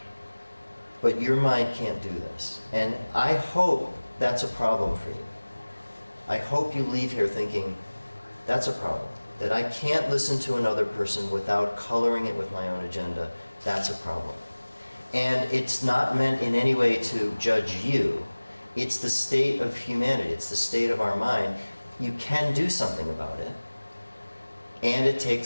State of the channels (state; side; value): inverted; both; correlation -1.00